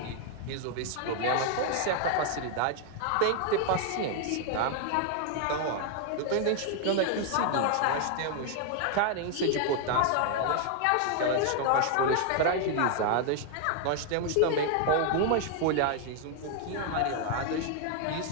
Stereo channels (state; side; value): different; both; correlation 0.00